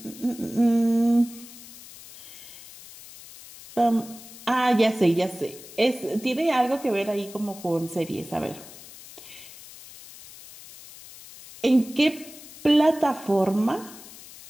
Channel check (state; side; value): noise; left; hiss, 17 dB below the sound